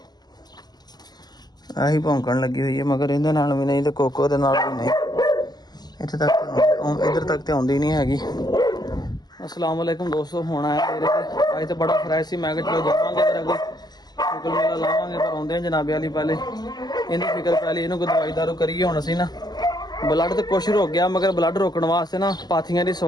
आही भौंकण लगी हुई है मगर इहदे नाल भी नहीं तो कोको दे नाल भी नहीं। इत्थे तक इधर तक तो आउंदी नहीं हैगी। अस्सलाम वालेकुम दोस्तों। होना है मेरे अज तो बड़ा फ्रैश सी मैं चलो जावांगे तेरा कोई शुक्ल मेला लावांगे पर आउंदे जनाबे वाली पहले इन्हें फिक्र पै ली इन्हूं कोई दवाई दारू करिए। हुण असीं ना ब्लड तो कुछ रुक गया मगर ब्लड रोकण वास्ते ना पाथियां की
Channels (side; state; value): right; late; 0.20 ms